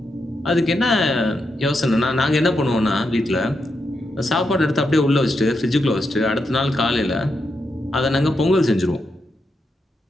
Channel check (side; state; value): both; normal; correlation 0.84